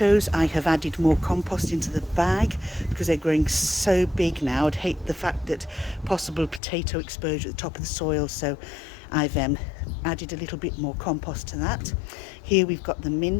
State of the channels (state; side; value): drops out; right; at 6.6 s